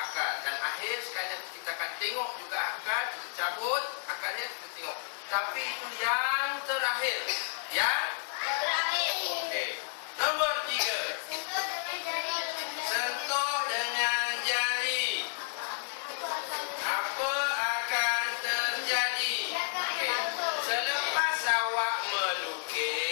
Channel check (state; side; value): silent; right; 57 dB below the other